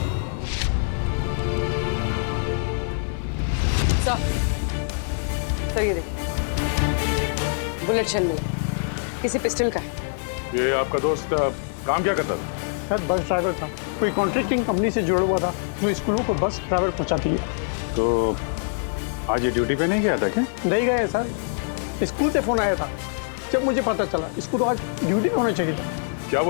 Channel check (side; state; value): right; silent; 62 dB below the other